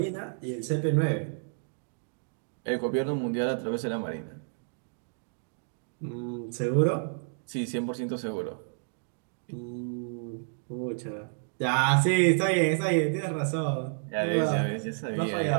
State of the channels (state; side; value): silent; left; digital silence